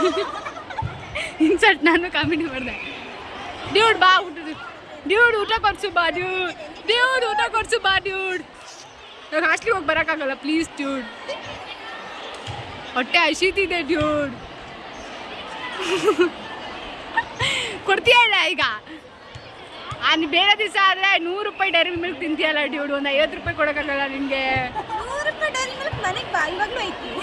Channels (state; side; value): identical; both; correlation 1.00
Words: ಇನ್ಸರ್ಟ್ ನಾನು ಕಾಮಿಡಿ ಮಾಡಿದೆ. ಡ್ಯೂಡ್ ಬಾ ಡ್ಯೂಡ್ ಊಟ ಕೊಡ್ಸು ಬಾ ಡ್ಯೂಡ್ ಊಟ ಕೊಡ್ಸು ಬಾ ಡ್ಯೂಡ್. ಇವಾಗ ಹಾಸ್ಟ್ಲಿಗೆ ಹೋಗಿ ಬರೋಕ್ಕಾಗಲ್ಲ ಪ್ಲೀಸ್ ಡ್ಯೂಡ್, ಹೊಟ್ಟೆ ಹಸಿತಿದೆ ಡ್ಯೂಡ್. ಕೊಡ್ತೀಯ ಇಲ್ಲ ಈಗ? ಬೇರೆ ದಿವಸ ಆದರೆ 100 ರೂಪಾಯಿ ಡೈರಿ ಮಿಲ್ಕ್ ತಿಂತೀಯಲ್ಲ ಡ್ಯೂಡ್, ಒಂದು 50 ರೂಪಾಯಿ ಕೊಡೋಕ್ಕಾಗಲ್ಲ ನಿನಗೆ.